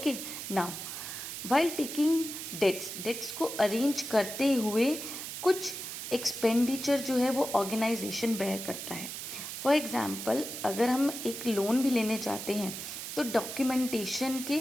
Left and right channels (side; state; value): right; noise; hiss, 7 dB below the sound